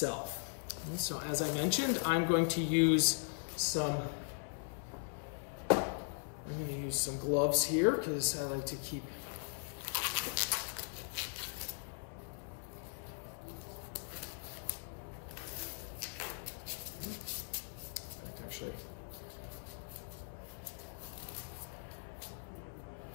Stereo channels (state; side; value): silent; right; 52 dB below the other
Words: And so as I mentioned, I'm going to use some gloves here because I like to keep